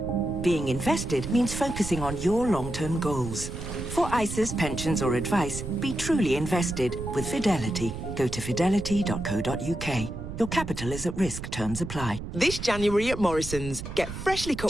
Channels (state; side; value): noise; right; rumble, 8 dB below the sound